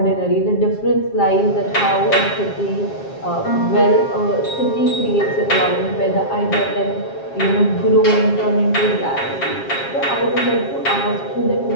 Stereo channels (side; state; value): right; late; 7.4 ms